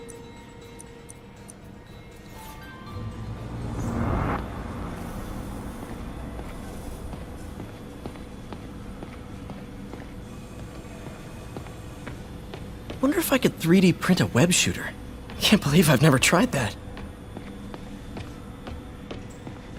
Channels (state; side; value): identical; both; correlation 1.00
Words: Wonder if I could 3D print a web shooter. Can't believe I've never tried that.